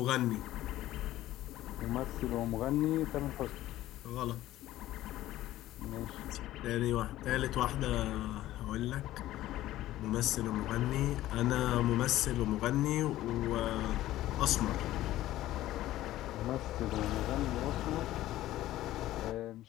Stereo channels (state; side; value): quieter; right; 14.8 dB